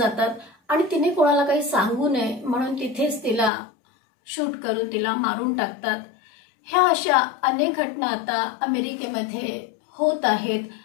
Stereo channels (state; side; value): drops out; right; at 3.5 s